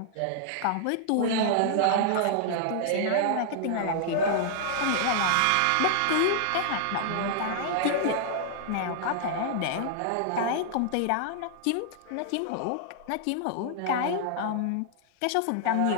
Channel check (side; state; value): both; different; correlation -0.01